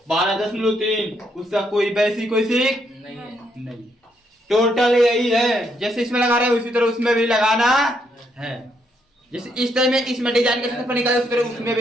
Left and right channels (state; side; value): normal; both; correlation 0.75